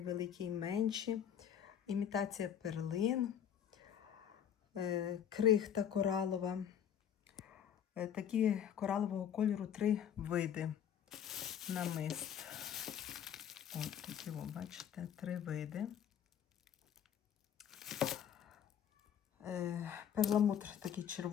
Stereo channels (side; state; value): right; quieter; 9.0 dB